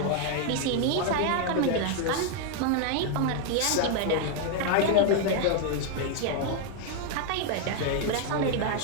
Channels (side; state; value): both; different; correlation 0.00